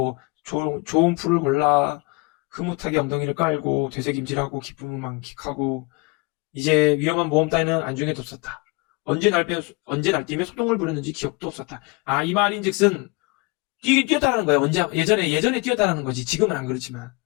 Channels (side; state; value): right; quieter; 27.6 dB